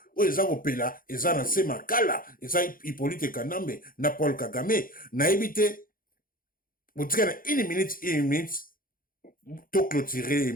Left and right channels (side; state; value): right; late; 0.41 ms